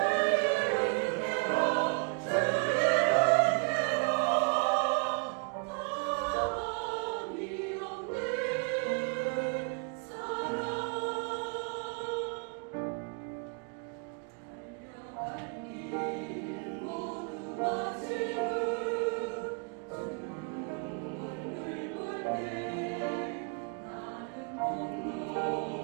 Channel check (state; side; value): quieter; left; 36.5 dB